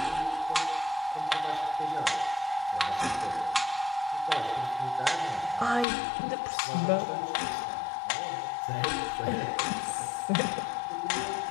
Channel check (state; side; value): drops out; right; at 5.9 s